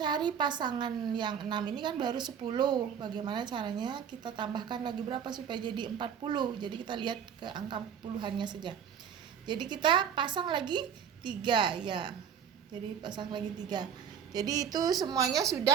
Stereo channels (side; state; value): left; quieter; 7.9 dB